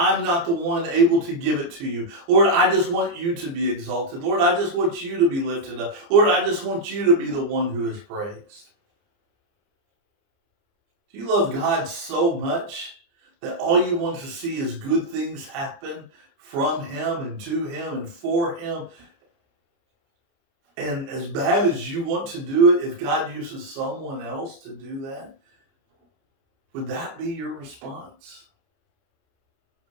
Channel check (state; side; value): late; left; 29 ms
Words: not the one able to give it to you, Lord, I just want you to be exalted. Lord, I just want you to be lifted up. Lord, I just want you to be the one who is praised." Do you love God so much that all you want to see is good things happen from him and to him and for him? And as bad as you want to do it, if God uses someone else to do that, would that be your response?